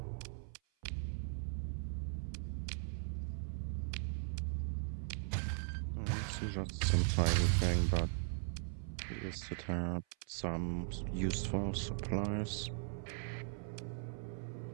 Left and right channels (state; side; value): silent; left; 52 dB below the other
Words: It's just some tiny thing, but at least it had some useful supplies,